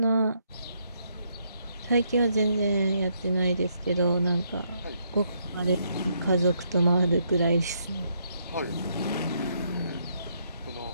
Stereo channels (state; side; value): inverted; both; correlation -0.74